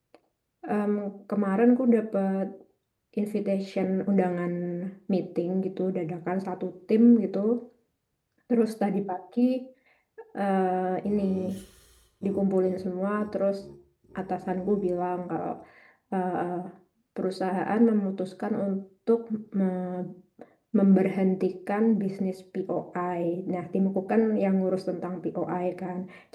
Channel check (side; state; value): both; identical; correlation 1.00